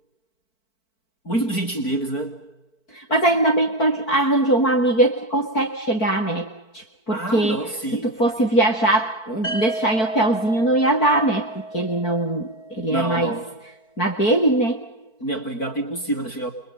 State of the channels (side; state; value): right; late; 4.5 ms